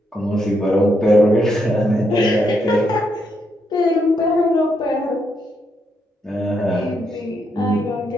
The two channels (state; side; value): normal; both; correlation 0.78